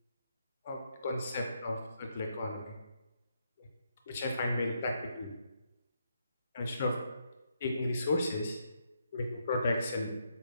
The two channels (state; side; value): inverted; both; correlation -0.78